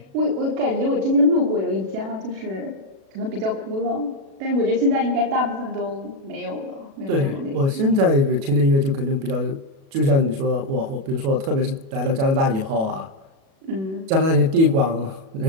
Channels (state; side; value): late; left; 37 ms